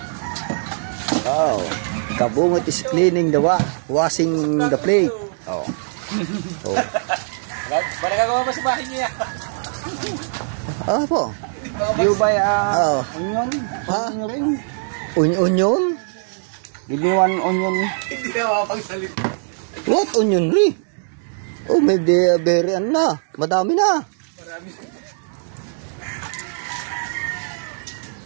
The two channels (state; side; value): silent; left; digital silence